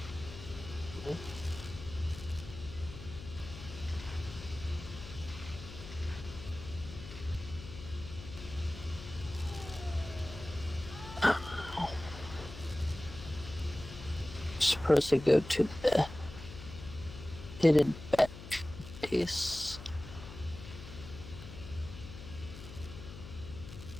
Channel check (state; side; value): noise; left; hum, 12 dB below the sound